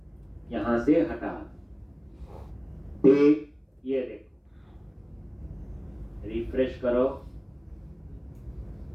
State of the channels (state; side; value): identical; both; correlation 1.00